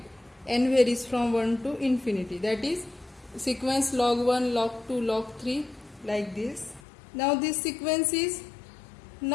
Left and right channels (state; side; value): drops out; right; at 6.8 s